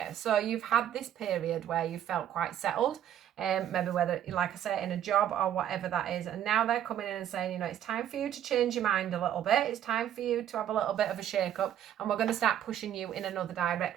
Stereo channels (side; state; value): left; quieter; 10.6 dB